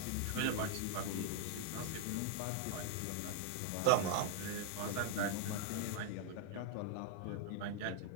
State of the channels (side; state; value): both; different; correlation 0.00